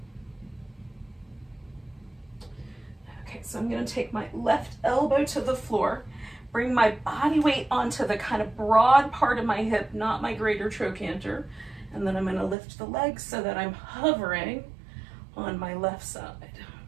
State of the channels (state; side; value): drops out; left; at 12.6 s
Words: Okay, so I'm going to take my left elbow to the floor, bring my body weight onto the kind of broad part of my hip, not my greater trochanter. And then I'm going to lift the legs so that I'm hovering on my left side.